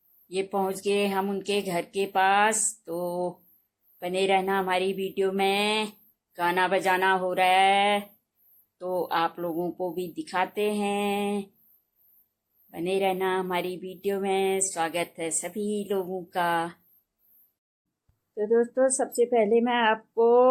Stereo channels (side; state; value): both; identical; correlation 1.00